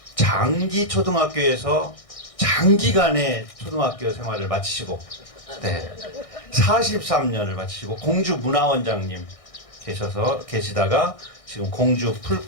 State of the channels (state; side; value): late; right; 1.6 ms